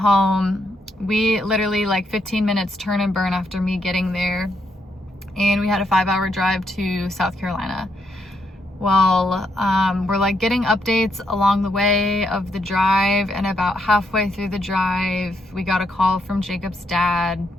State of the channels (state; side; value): normal; both; correlation 0.78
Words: We literally like 15 minutes turn and burn after me getting there. And we had a 5-hour drive to South Carolina. Well, we're like getting updates along the way of the drive. And about halfway through the drive, we got a call from Jacob's dad,